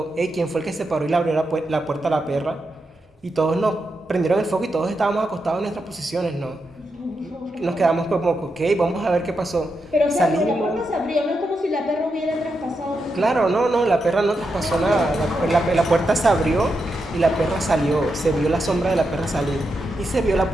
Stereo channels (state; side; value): normal; both; correlation 0.85